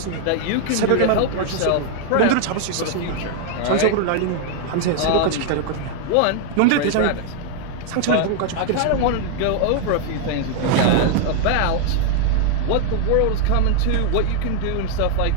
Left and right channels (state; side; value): different; both; correlation 0.00